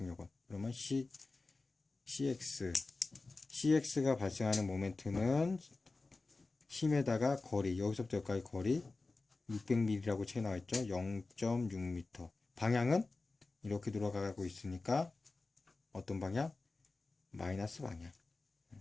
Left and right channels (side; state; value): right; quieter; 3.6 dB